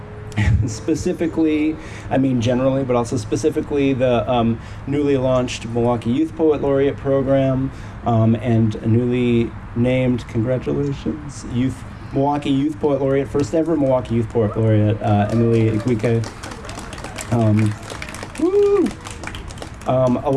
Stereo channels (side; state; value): both; identical; correlation 1.00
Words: Specifically, generally, but also specifically the newly launched Milwaukee Youth Poet Laureate program and a newly named, congratulations, Milwaukee Youth Poet Laureate, first ever Milwaukee Youth Poet Laureate, Emily Igwike.